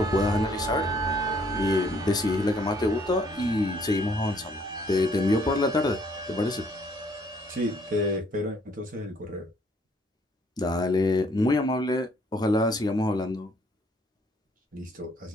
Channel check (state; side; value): normal; both; correlation 0.64